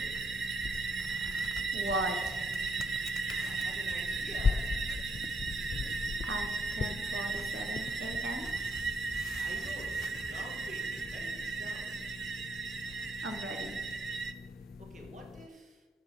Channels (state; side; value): normal; both; correlation 0.74